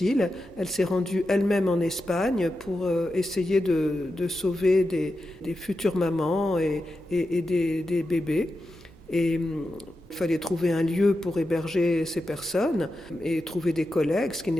Elle s'est rendue elle-même en Espagne pour essayer de sauver des futures mamans et des bébés. Et il fallait trouver un lieu pour héberger ces personnes et trouver des collègues, ce qui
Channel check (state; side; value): normal; both; correlation 0.89